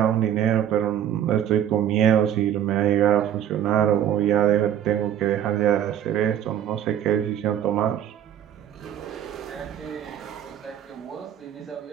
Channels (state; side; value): quieter; left; 10.3 dB